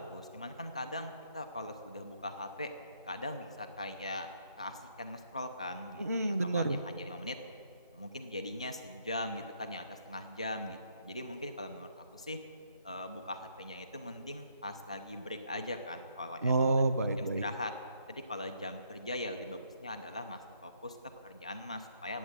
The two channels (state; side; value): inverted; both; correlation -0.70